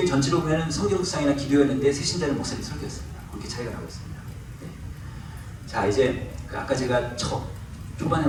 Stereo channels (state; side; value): identical; both; correlation 1.00